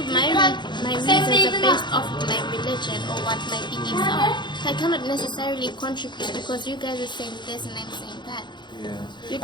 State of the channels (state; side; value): late; right; 0.22 ms